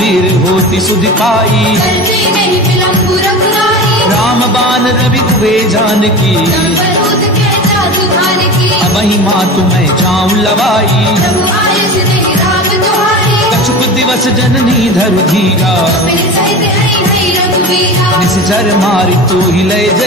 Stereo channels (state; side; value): normal; both; correlation 0.31